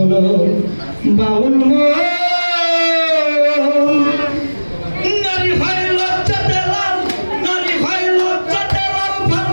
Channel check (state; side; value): inverted; both; correlation -1.00